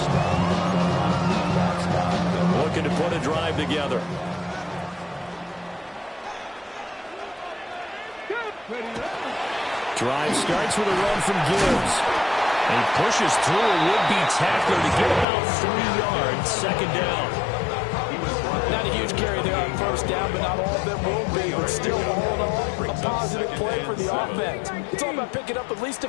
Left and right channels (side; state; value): right; drops out; at 15.2 s